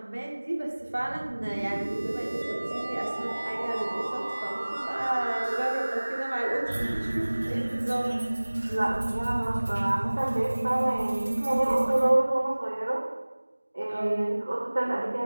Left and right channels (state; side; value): inverted; both; correlation -1.00